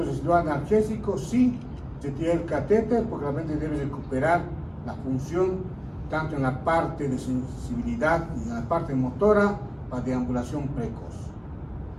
residual analgésico, sí, se tira el catéter porque la mente debe recuperar la función tanto en la parte de sensibilidad y en la parte motora para deambulación precoz.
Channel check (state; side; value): identical; both; correlation 1.00